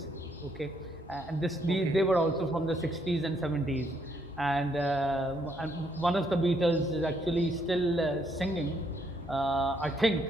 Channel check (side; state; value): both; normal; correlation 0.72